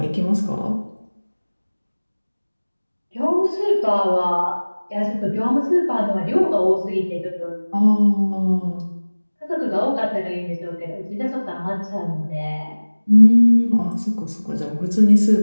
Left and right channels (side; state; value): both; inverted; correlation -1.00